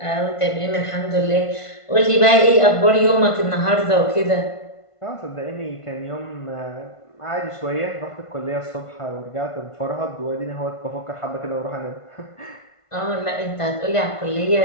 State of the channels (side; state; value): right; late; 1.5 ms